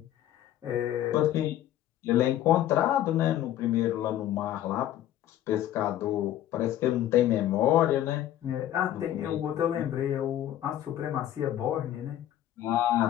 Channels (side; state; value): right; quieter; 12.3 dB